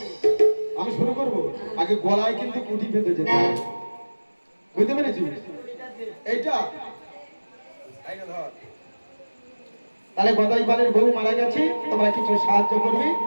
আমি শুরু করবো। আগে গলায় কিন্তু কুটি বেঁধে যেতে হবে, বুঝতে পেরেছিস? এইটা তাহলে গদাইপালের বউ মারা গেছে, তোমরা কিছু সাহায্য করবি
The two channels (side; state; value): both; inverted; correlation -1.00